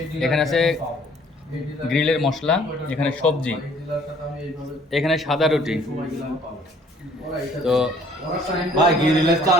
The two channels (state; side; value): normal; both; correlation 0.58